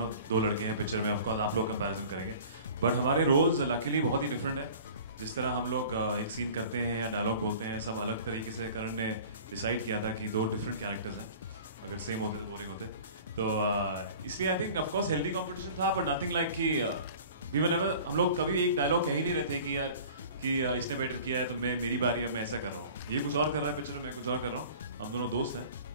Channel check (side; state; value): both; inverted; correlation -0.44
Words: दो लड़के हैं पिक्चर में, ऑफ कोर्स आप लोग कंपैरिजन करेंगे, बट हमारे रोल्स लकीली बहुत ही डिफरेंट है। जिस तरह हम लोग एक सीन करते हैं या डायलॉग बोलते हैं, सब अलग तरीके से करण ने डिसाइड किया था कि दो डिफरेंट कैरेक्टर्स हैं, अगर सेम होते तो बोरिंग होते। तो इसलिए I think of course healthy competition था, बट नथिंग लाइक कि वी वर नेवर, हम लोग कभी एक डायलॉग कह ही नहीं रहे थे कि यार कि इसने बेटर किया है तो मैं मेरी बारी है, मैं ऐसा कर रहा हूँ, ये कुछ और कर रहा है पिक्चर में, मैं कुछ और कर रहा हूँ। हम दोनों दोस्त हैं,